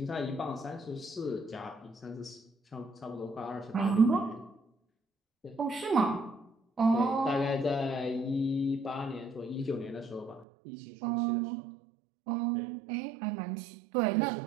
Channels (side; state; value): left; drops out; at 10.5 s